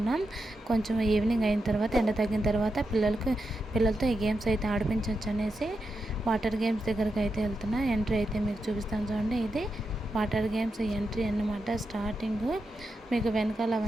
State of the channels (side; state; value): both; normal; correlation 0.87